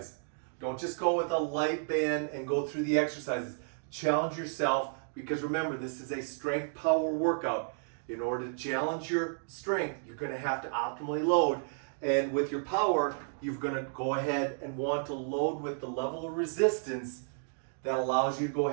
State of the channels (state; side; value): silent; left; digital silence